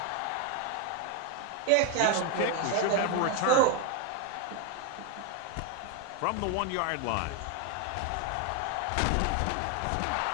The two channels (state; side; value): different; both; correlation 0.01